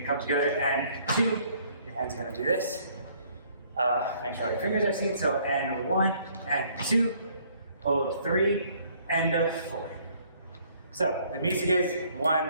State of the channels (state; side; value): inverted; both; correlation -0.62